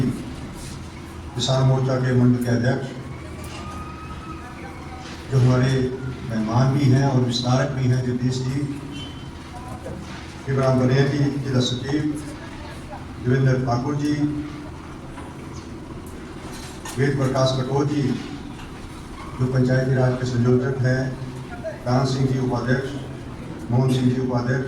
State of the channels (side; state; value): both; identical; correlation 1.00